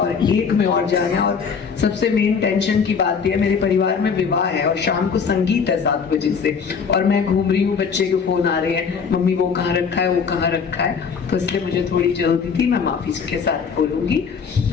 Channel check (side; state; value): right; quieter; 6.0 dB